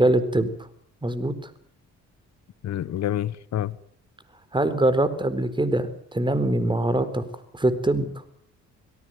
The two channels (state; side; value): normal; both; correlation 0.69